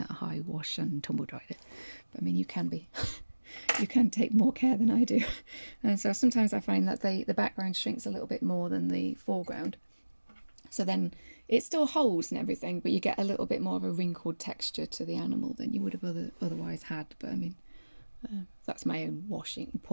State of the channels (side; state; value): both; inverted; correlation -1.00